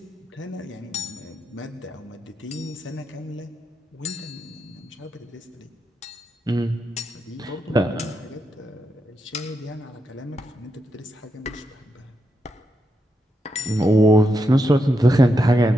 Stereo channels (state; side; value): normal; both; correlation 0.84